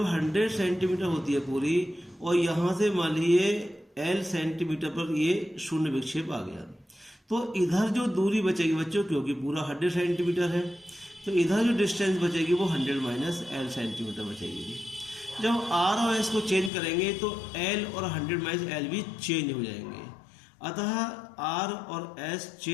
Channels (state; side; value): drops out; right; at 16.7 s